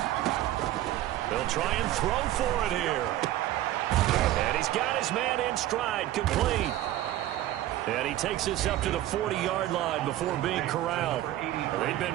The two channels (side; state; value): left; quieter; 14.1 dB